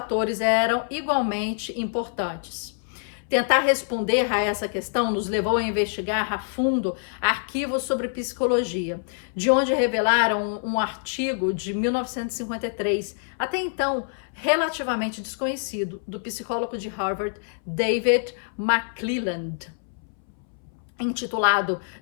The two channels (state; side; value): silent; right; 61 dB below the other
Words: eram igualmente importantes. Tentar responder a essa questão nos levou a investigar a fundo arquivos sobre psicologia, de onde revelaram um artigo de 1953, até então relativamente desconhecido, do psicólogo de Harvard, David McClelland, intitulado